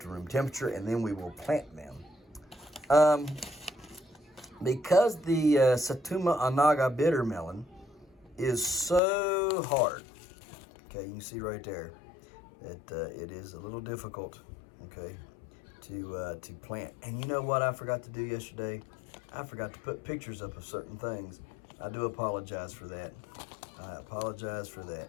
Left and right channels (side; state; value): right; drops out; at 9.0 s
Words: room temperature, and then we will plant them. Because the Satuma Anaga bitter melon is so hard, okay, you can see right there that it is a little difficult, okay, to plant. And you know what I forgot to do yesterday? I forgot to put pictures up of certain things. I do apologize for that. I apologize for that.